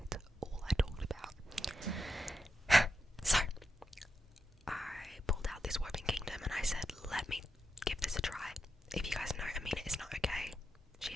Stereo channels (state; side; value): normal; both; correlation 0.86